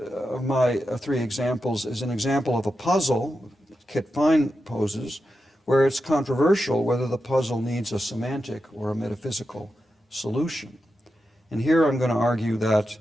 my three examples is an example of a puzzle Kit Fine poses, where it's controversial whether the puzzle needs a semantic or a metaphysical solution. And here I'm going to argue that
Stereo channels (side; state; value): both; normal; correlation 0.89